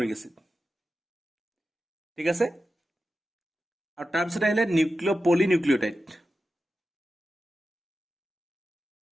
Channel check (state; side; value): normal; both; correlation 0.92